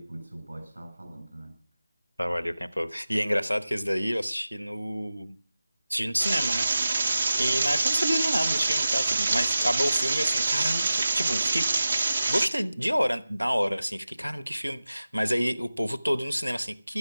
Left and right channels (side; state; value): both; inverted; correlation -0.94